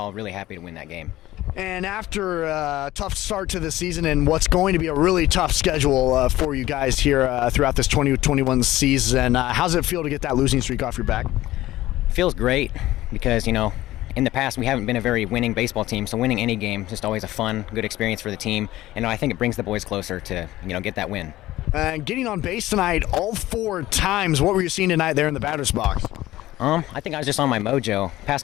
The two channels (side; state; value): right; quieter; 15.9 dB